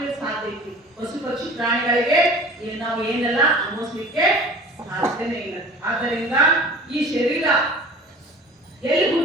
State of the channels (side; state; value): both; normal; correlation 0.43